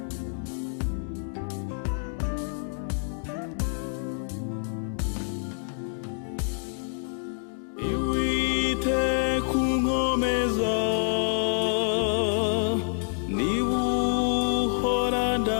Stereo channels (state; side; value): silent; right; 60 dB below the other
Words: Iwite kunkomeza nibuhora